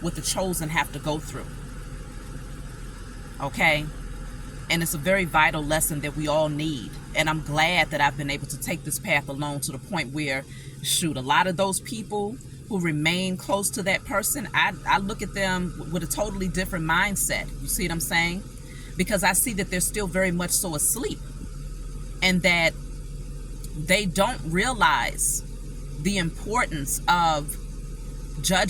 what the chosen have to go through. Okay? And it's a very vital lesson that we all need. And I'm glad that I've been able to take this path alone to the point where, shoot, a lot of those people who remain close to that person, I look at them with a totally different mindset. You see what I'm saying? Because I see that they're still very much so asleep, and that they don't realize the importance of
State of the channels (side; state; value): both; identical; correlation 1.00